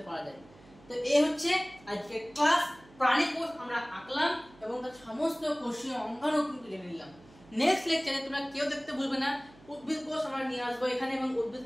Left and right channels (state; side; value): noise; right; hum, 24 dB below the sound